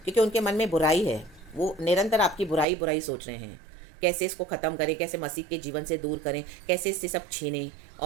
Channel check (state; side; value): drops out; left; at 2.7 s